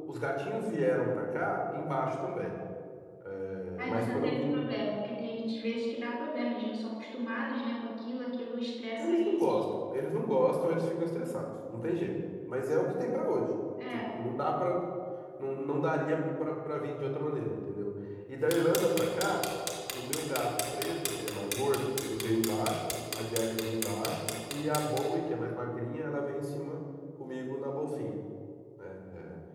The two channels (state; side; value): identical; both; correlation 1.00